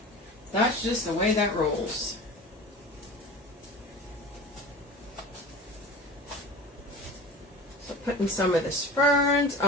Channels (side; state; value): both; normal; correlation 0.35